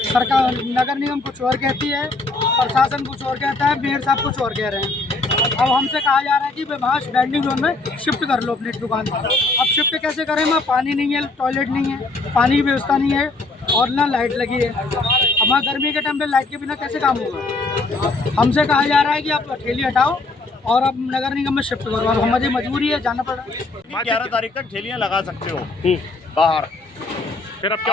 सरकार, नगर निगम कुछ और कहती है, प्रशासन कुछ और कहता है, मेयर साहब कुछ और कह रहे हैं। अब हमसे कहा जा रहा है कि वहाँ वेंडिंग जोन में शिफ्ट कर लो अपनी दुकान। अब शिफ्ट कैसे करें? वहाँ पानी नहीं है, टॉयलेट नहीं है, पानी की व्यवस्था नहीं है और ना लाइट लगी है। हमारा गर्मी के टाइम पे लाइट के बिना कैसे काम होगा? हमसे कहा जा रहा है कि आप ठेली हटाओ और अब नगर निगम में शिफ्ट करो। अब हमारी मजबूरी है, जाना पड़ रहा है। 11 तारीख तक ठेलियां लगा सकते हो बाहर। फिर अब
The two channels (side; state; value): right; quieter; 3.3 dB